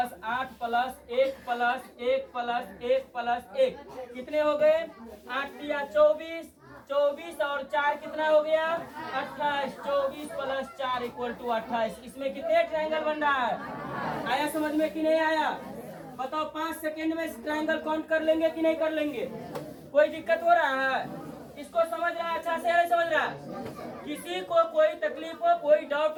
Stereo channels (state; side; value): identical; both; correlation 1.00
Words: 8 plus 1 plus 1 plus 1 plus 1, कितने हो गए? 8 या 24, 24 और 4 कितना हो गया? 28। 24 प्लस 4 इक्वल टू 28। इसमें कितने ट्रायंगल बन रहा है? आया समझ में कि नहीं आया? बताओ 5 सेकेंड में ट्रायंगल काउंट कर लेंगे कि नहीं कर लेंगे? कोई दिक्कत हो रहा है? इसको समझ रहा है अच्छा से नहीं समझ रहा? किसी को कोई तकलीफ हो, कोई डाउट